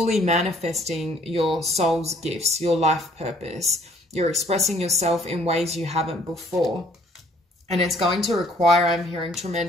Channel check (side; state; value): both; normal; correlation 0.60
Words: manifesting your soul's gifts, your life purpose. You're expressing yourself in ways you haven't before. And it's going to require, I'm hearing,